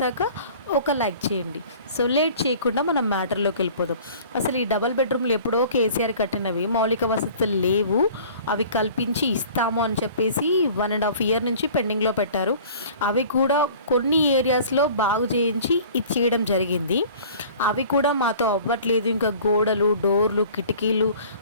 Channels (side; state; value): both; inverted; correlation -0.46